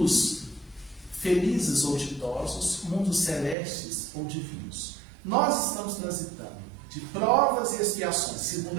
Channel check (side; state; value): left; drops out; at 3.6 s